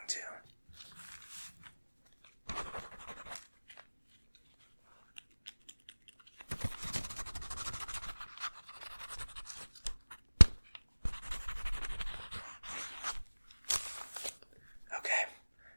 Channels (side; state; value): both; inverted; correlation -1.00